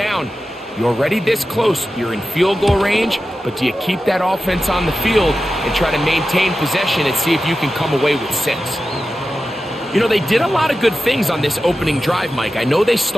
you're already this close. You're in field goal range, but do you keep that offense on the field and try to maintain possession and see if you can come away with 6? You know, they did a lot of good things on this opening drive, Mike. I know they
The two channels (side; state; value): both; normal; correlation 0.93